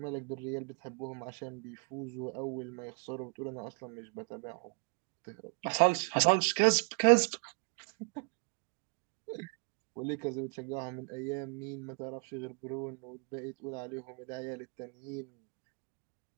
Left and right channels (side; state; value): left; quieter; 36.7 dB